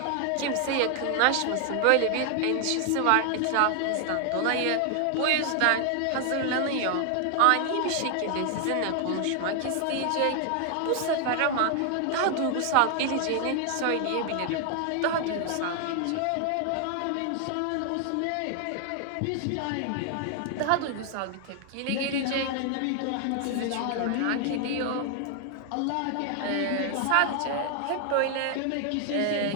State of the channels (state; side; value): different; both; correlation 0.00